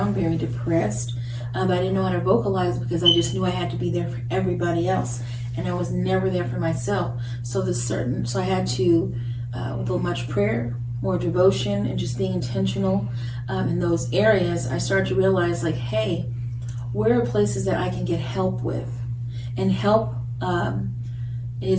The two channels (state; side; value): identical; both; correlation 1.00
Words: very depressed. But I didn't know how to vocalize because I just knew I had to be there for everybody else. and I was never there for myself. So I had to, with much prayer, more devotion, and just being intentional in those areas, I started to realize, like, hey, where are places that I can get help with? And help